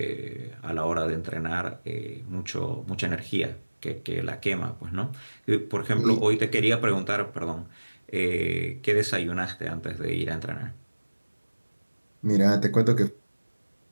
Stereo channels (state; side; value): inverted; both; correlation -1.00